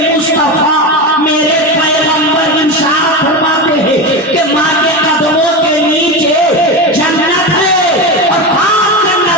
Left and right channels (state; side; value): normal; both; correlation 0.19